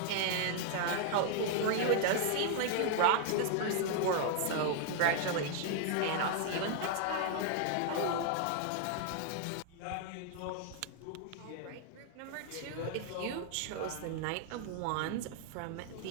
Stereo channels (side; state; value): both; different; correlation 0.00